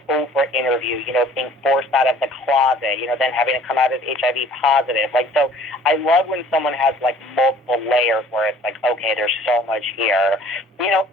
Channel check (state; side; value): normal; both; correlation 0.52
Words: Oprah interview, being forced out of the closet, then having to come out as HIV positive. Like, so I love when someone has, like, multiple layers where it's like, okay, there's so much here.